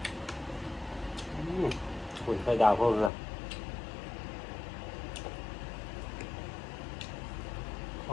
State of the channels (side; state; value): right; drops out; at 3.1 s